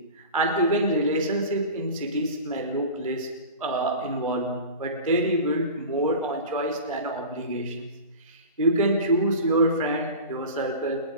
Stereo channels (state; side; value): inverted; both; correlation -0.34